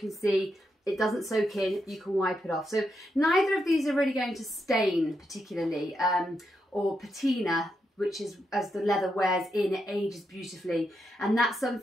see, it doesn't soak in, you can wipe it off. So neither of these are really going to stain particularly, or patina, which is as the leather wears in, it ages beautifully. And that's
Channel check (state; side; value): normal; both; correlation 0.83